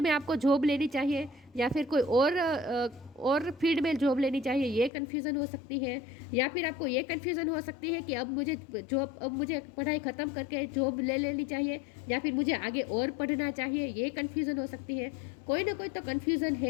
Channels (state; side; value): drops out; right; at 4.9 s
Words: में आपको जॉब लेनी चाहिए, या फिर कोई और फील्ड में जॉब लेनी चाहिए, ये कन्फ्यूज़न हो सकती है। या फिर आपको ये कन्फ्यूज़न हो सकती है कि अब मुझे पढ़ाई ख़त्म करके जॉब ले लेनी चाहिए, या फिर मुझे आगे और पढ़ना चाहिए, ये कन्फ्यूज़न हो सकती है। कोई ना कोई तो कन्फ्यूज़न